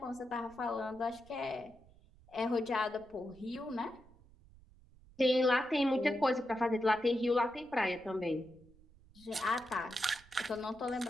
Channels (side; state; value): right; noise; rumble, 25 dB below the sound